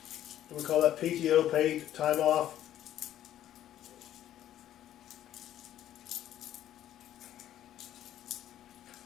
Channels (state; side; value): quieter; right; 11.9 dB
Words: We call that PTO, paid time off.